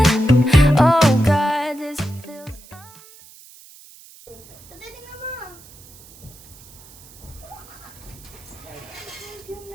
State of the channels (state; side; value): noise; right; hiss, 22 dB below the sound